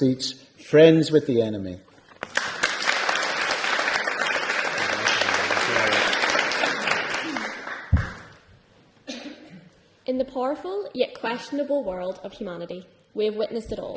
Friends with the Enemy. In the powerful yet questionable world of humanity, we have witnessed it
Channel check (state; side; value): identical; both; correlation 1.00